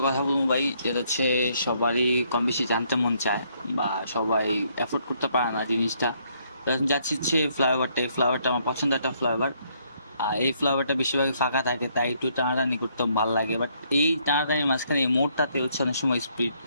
কথা বলবো ভাই, যেটা হচ্ছে সবারই কম বেশি জানতে মন চায় বা সবাই এফোর্ড করতে পারে না জিনিসটা। তো এখন যাচ্ছি হচ্ছে ফ্লাইওভারটা। এই ফ্লাইওভারটা আমার পছন্দের একটা ফ্লাইওভার। এই ফ্লাইওভারটা বেশিরভাগই ফাঁকা থাকে, তাই একটু টানাটানি করতে ভালো লাগে। বাট এই টানাটানির মাঝখানে এই মোড়টাতে হচ্ছে অনেক সময় স্পিড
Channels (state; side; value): inverted; both; correlation -0.70